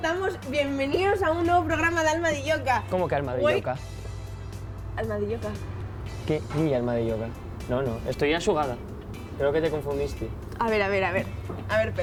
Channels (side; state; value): both; identical; correlation 1.00